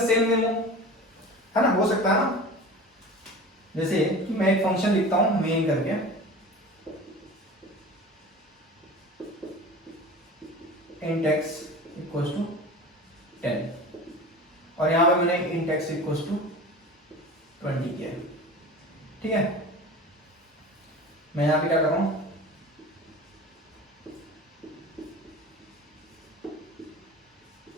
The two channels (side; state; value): both; normal; correlation 0.36